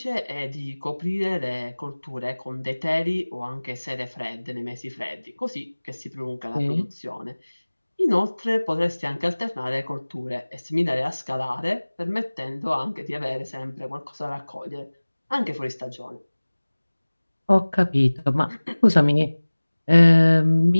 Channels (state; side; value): inverted; both; correlation -1.00